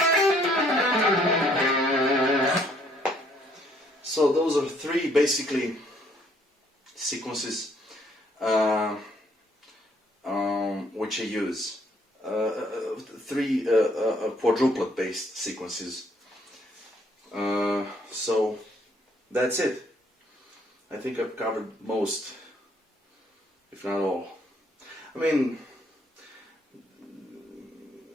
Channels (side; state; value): both; normal; correlation 0.66